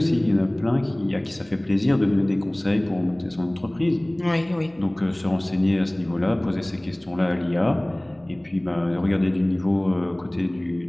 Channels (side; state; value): right; noise; hum, 30 dB below the sound